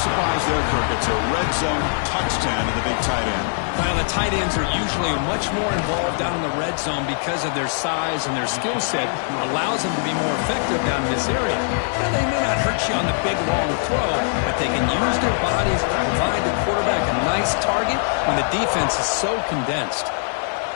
surprise there, Kirk. It's a red zone touchdown to the big tight end. Well, the tight ends are usually much more involved down in the red zone because of their size and their skill set. Allows them to be more effective down in this area. Now, they may not hurt you on the big, long throw, but they can use their bodies to provide the quarterback a nice target when the defense is so condensed.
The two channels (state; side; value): silent; right; 63 dB below the other